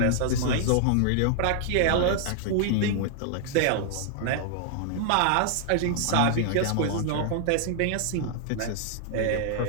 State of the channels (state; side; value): different; both; correlation 0.00